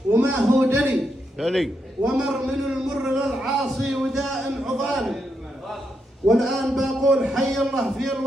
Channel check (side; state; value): both; normal; correlation 0.82